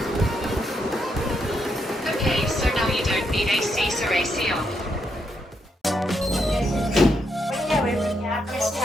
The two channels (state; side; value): normal; both; correlation 0.79